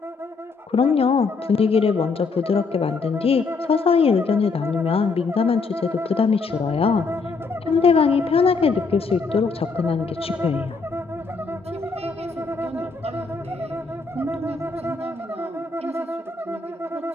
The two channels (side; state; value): right; quieter; 4.4 dB